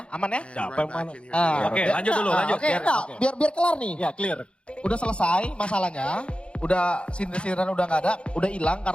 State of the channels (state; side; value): late; right; 0.058 ms